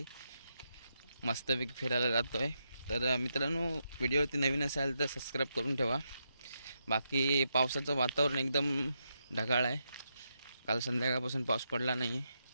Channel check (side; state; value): both; inverted; correlation -0.83